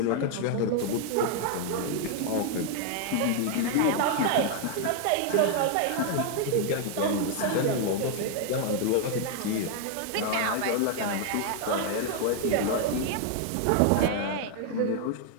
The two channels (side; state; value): both; different; correlation 0.00